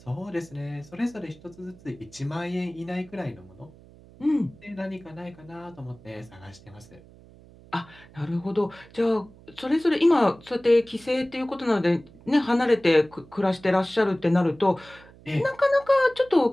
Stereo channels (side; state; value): right; noise; hum, 23 dB below the sound